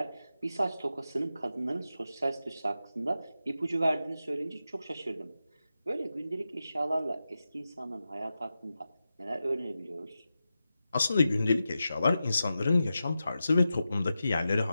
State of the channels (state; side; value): inverted; both; correlation -0.91